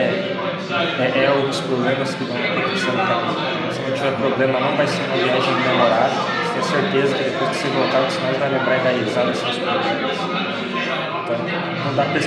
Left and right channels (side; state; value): both; identical; correlation 1.00